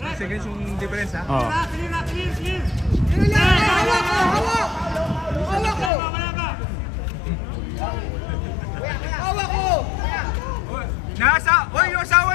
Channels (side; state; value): right; drops out; at 5.9 s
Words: 2 seconds yung difference ha. Oh. Hawak ko! Oy, yung asawa